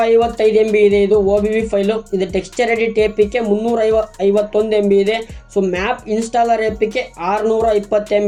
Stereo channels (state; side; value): identical; both; correlation 1.00